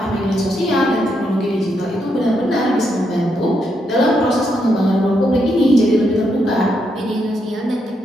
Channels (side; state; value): both; normal; correlation 0.80